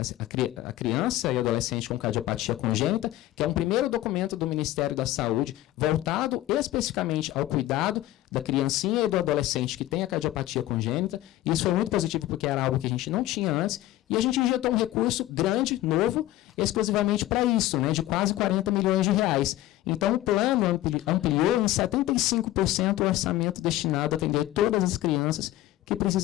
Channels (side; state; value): right; quieter; 15.2 dB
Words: a criança e adolescente com cardiopatia congênita, que é um primeiro documento do Ministério da Saúde voltado especificamente ao cuidado da criancinha e do adolescente que tem a cardiopatia congênita. Isso foi muito positivo porque era algo que a gente não tinha antes. E a gente injetou um recurso grande, novo, exclusivamente para isso, né, de quase 40 milhões de reais. Então, o plano ampliou em 75% o orçamento destinado a atender todas as crianças que